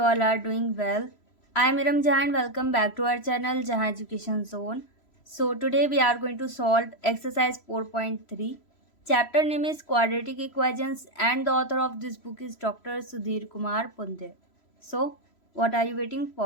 all are doing well. I am Iram Jahan. Welcome back to our channel Jahan Education Zone. So today we are going to solve exercise 4.3. Chapter name is Quadratic Equations and the author of this book is Dr. Sudhir Kumar Punde. So what are you waiting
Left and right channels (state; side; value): late; right; 3.0 ms